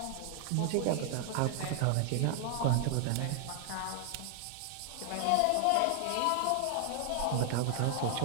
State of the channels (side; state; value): both; different; correlation 0.00